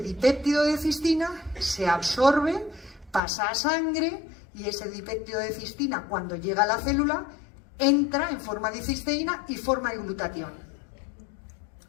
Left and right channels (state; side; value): drops out; right; at 3.2 s